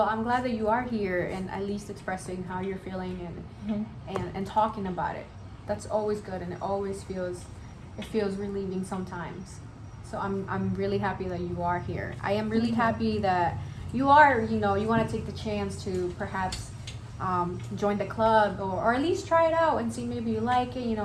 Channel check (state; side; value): identical; both; correlation 1.00